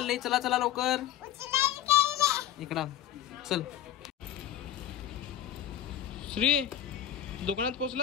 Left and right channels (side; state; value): right; quieter; 11.2 dB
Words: लई. चला चला लवकर इकडं चल. श्री दुकानात